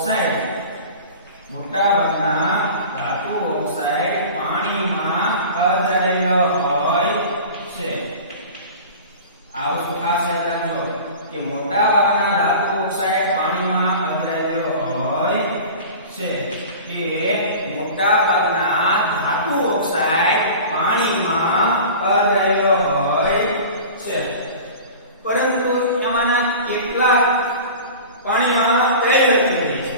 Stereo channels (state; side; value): inverted; both; correlation -0.38